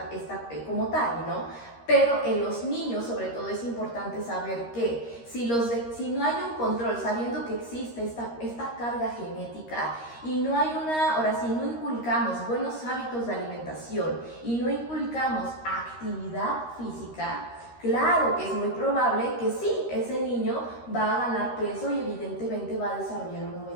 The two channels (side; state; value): right; late; 13 ms